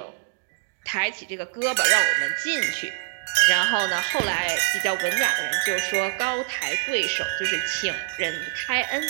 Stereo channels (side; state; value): left; silent; digital silence